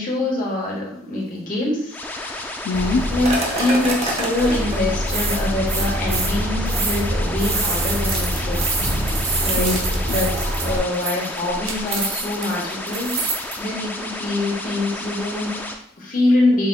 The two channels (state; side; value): normal; both; correlation 0.59